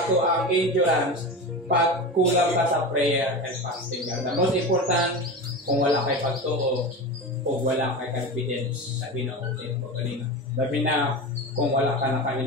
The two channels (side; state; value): both; normal; correlation 0.26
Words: ato ang endurance pag kulang ka sa prayer and fasting. The most important, kung wala kay pagtuo o wala kay confidence sa Ginoo mo kanina. Labi na kung wala ka na